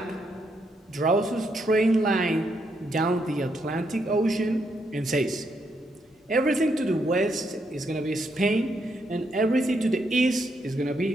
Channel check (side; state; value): both; normal; correlation 0.78